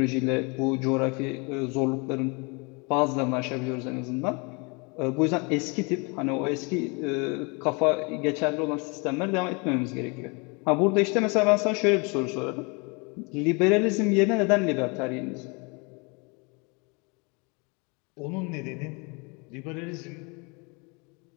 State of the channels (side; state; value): right; quieter; 30.8 dB